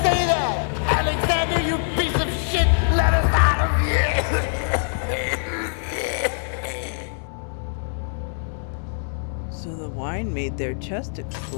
that? Alexander, you piece of shit! Let us out of here! So the wine made their chest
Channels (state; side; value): silent; right; digital silence